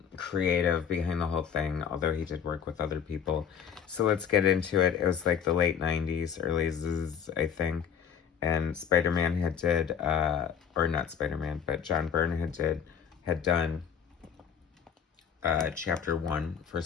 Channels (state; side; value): quieter; right; 7.8 dB